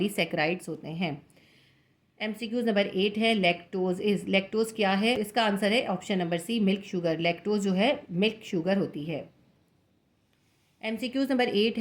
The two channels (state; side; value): identical; both; correlation 1.00